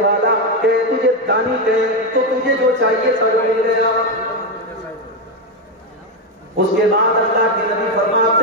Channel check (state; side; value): normal; both; correlation 0.07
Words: کہیں، تجھے دانی کہیں، تو تجھے جو چاہیے سب مل گیا۔ اس کے بعد اللہ کے نبی